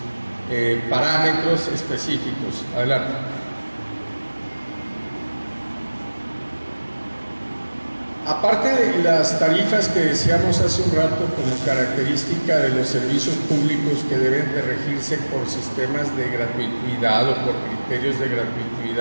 parámetros específicos. Adelante. Aparte de las tarifas que decíamos hace un rato como característica de los servicios públicos que deben de regirse por sistemas de gratuidad o por criterios de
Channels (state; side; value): inverted; both; correlation -1.00